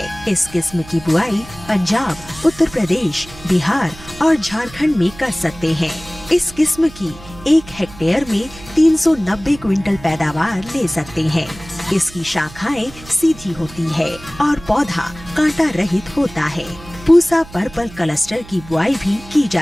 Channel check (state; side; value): noise; right; hum, 18 dB below the sound